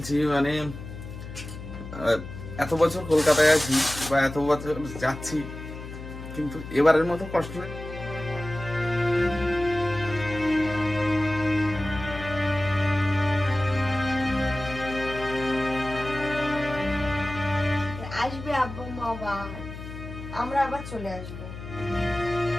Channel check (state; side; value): noise; left; hum, 11 dB below the sound